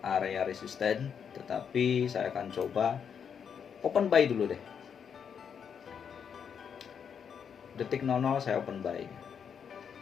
area resisten, tetapi saya akan coba open buy dulu deh. Detik 00 saya open buy.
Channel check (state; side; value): quieter; right; 7.3 dB